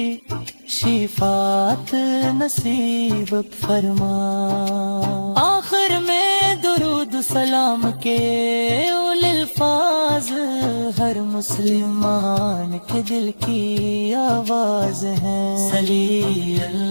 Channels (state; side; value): inverted; both; correlation -1.00